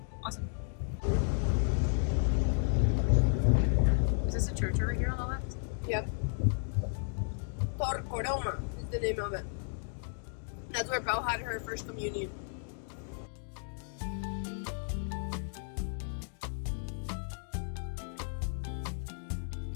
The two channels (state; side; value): silent; right; 55 dB below the other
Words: Awesome. Is this a church over here on the left? Yep. Torcoroma is the name of it. That's where Pau had her first communion.